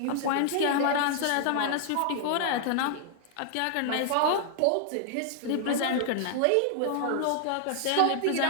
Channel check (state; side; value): different; both; correlation -0.01